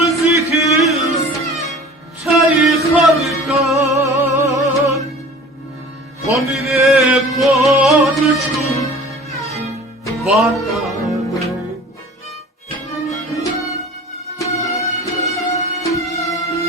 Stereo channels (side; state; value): both; normal; correlation 0.43